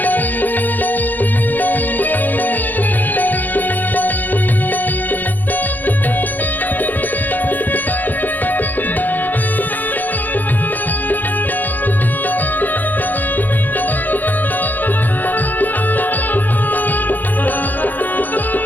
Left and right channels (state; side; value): late; right; 0.085 ms